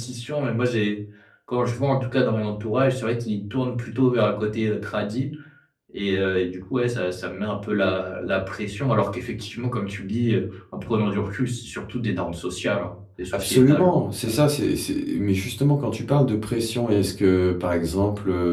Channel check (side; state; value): both; identical; correlation 1.00